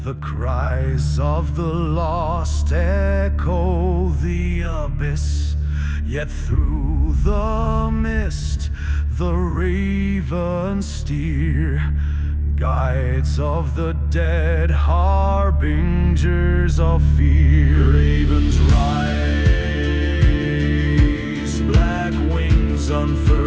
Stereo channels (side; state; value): both; identical; correlation 1.00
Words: The cries of the lost echo the abyss. Yet through the mist the ravens steer, guides of the dead, harbingers of fear. Ravens rise, black wings